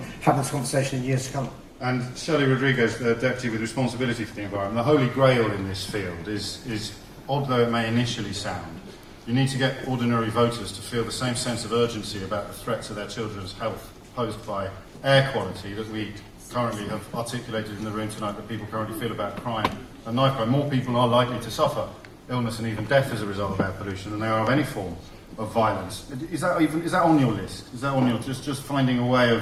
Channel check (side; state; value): both; identical; correlation 1.00